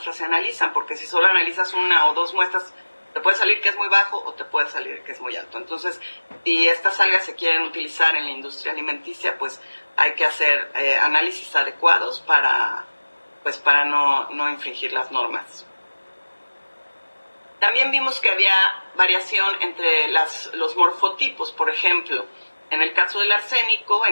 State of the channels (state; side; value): inverted; both; correlation -1.00